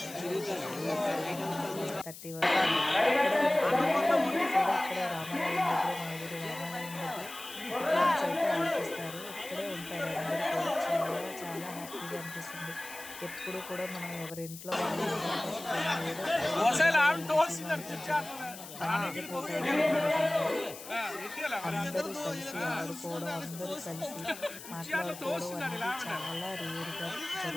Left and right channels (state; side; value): noise; left; hiss, 14 dB below the sound